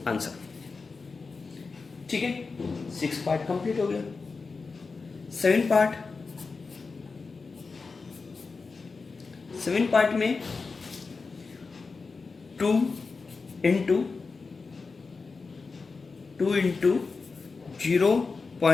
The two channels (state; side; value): quieter; right; 4.4 dB